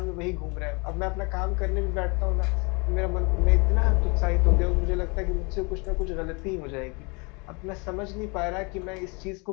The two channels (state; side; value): quieter; right; 30.4 dB